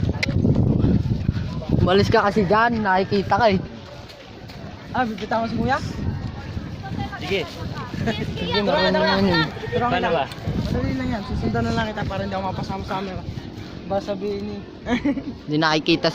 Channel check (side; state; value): both; identical; correlation 1.00